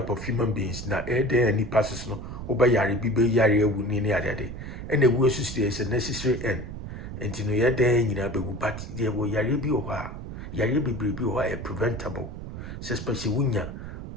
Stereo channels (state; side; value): noise; right; rumble, 9 dB below the sound